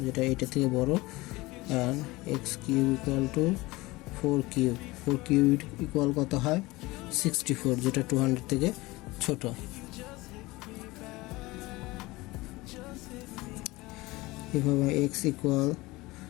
যেটা এটা থেকে বড়, and X cube equal to 4 cube equal কত হয় 64, যেটা 200 থেকে ছোট। এভাবে এক্স ইকুয়াল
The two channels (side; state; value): right; quieter; 21.1 dB